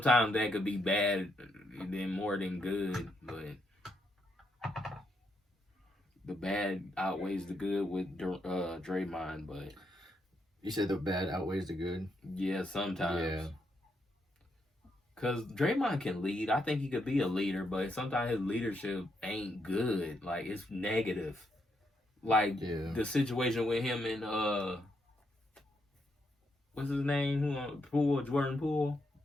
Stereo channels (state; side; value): normal; both; correlation 0.79